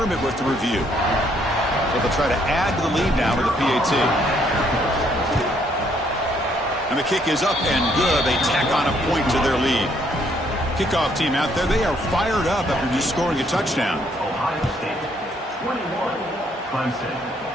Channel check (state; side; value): normal; both; correlation 0.68